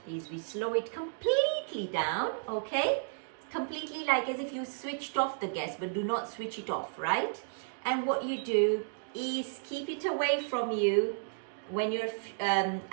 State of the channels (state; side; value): silent; left; digital silence